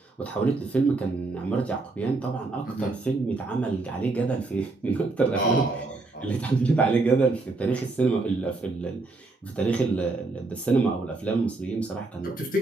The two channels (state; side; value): quieter; left; 3.4 dB